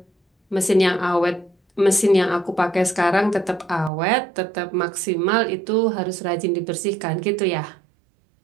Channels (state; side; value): drops out; left; at 3.9 s